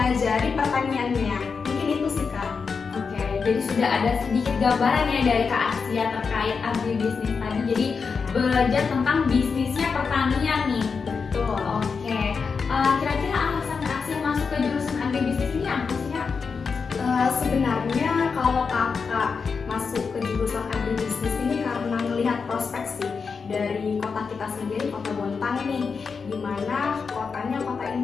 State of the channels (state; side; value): quieter; right; 5.3 dB